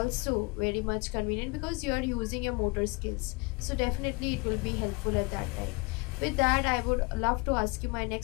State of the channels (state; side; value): quieter; right; 28.1 dB